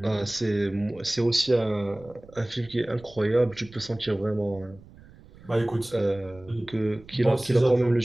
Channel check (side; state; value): right; noise; rumble, 22 dB below the sound